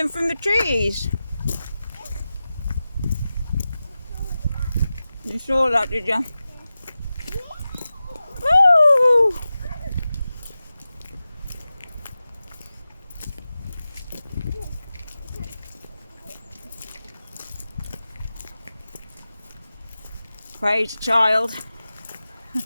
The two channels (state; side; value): inverted; both; correlation -0.94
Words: from the trees. You saw that, did you? Woo! Praise child.